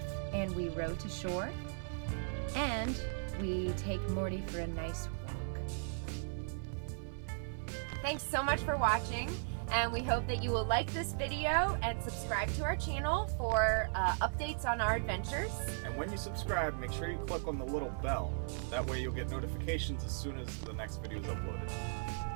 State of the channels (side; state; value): left; silent; 53 dB below the other